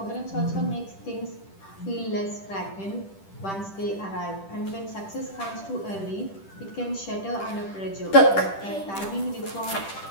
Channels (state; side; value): late; right; 10 ms